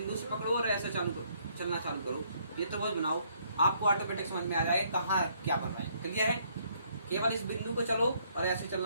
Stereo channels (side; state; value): both; inverted; correlation -0.67